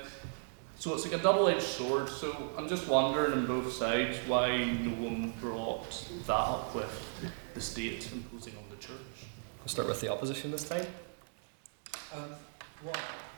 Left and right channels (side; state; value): left; silent; digital silence